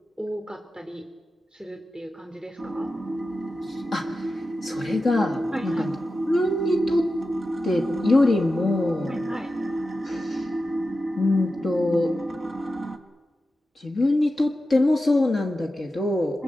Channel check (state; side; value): normal; both; correlation 0.92